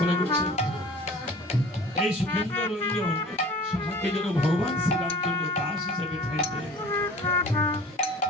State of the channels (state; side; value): normal; both; correlation 0.43